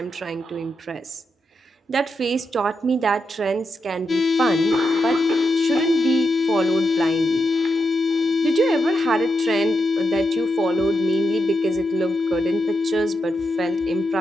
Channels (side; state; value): both; normal; correlation 0.84